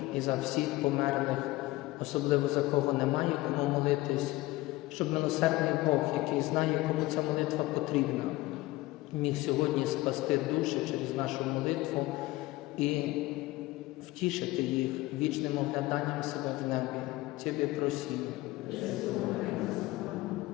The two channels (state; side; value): quieter; right; 19.0 dB